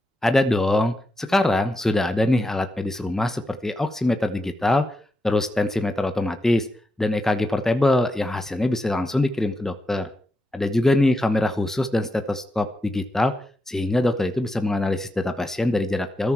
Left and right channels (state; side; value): normal; both; correlation 0.86